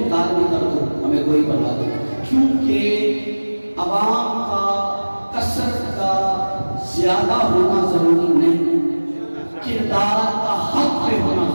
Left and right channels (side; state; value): both; inverted; correlation -1.00